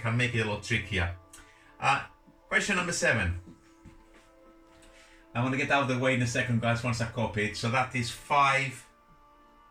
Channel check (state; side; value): identical; both; correlation 1.00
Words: can make it a lot trickier. Question number 7. I want to get out of the way in a second, guys, once I copy it. So that is 5